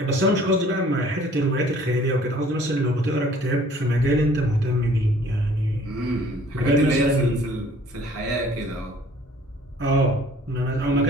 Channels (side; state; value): both; normal; correlation 0.54